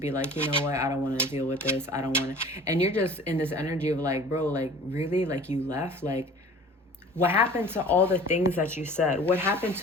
like, you know what, I don't want to deal with this. I don't want to. And you're just in this energy of like, bro, like really, like you left. Like what happened to all the things that you said? What happened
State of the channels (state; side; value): normal; both; correlation 0.44